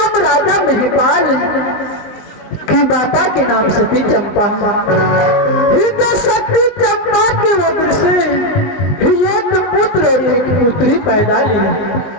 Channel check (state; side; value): late; right; 20 ms